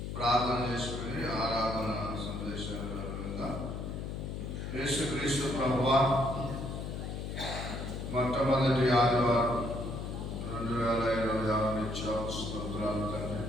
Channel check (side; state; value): left; noise; hum, 5 dB below the sound